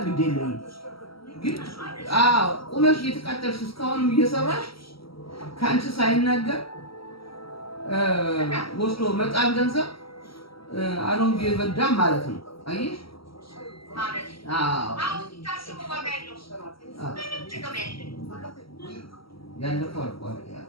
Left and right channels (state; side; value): late; right; 0.75 ms